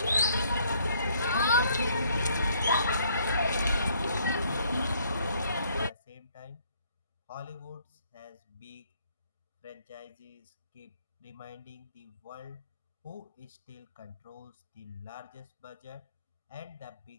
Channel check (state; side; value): inverted; both; correlation -0.65